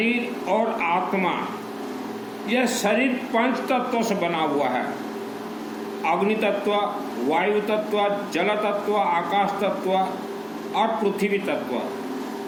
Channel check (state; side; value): identical; both; correlation 1.00